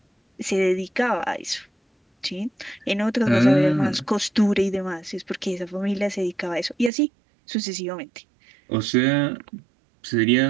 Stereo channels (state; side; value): drops out; left; at 6.9 s